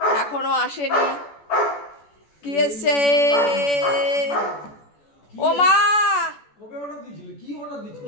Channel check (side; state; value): right; late; 14 ms